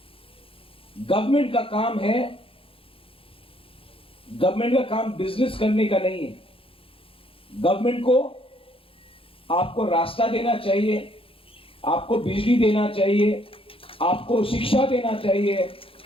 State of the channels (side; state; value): right; late; 0.27 ms